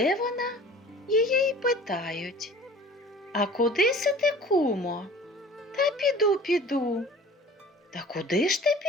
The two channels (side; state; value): both; normal; correlation 0.44